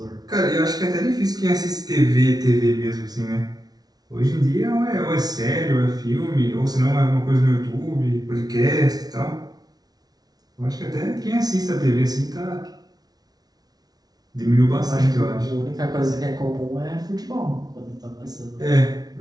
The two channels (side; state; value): left; late; 0.19 ms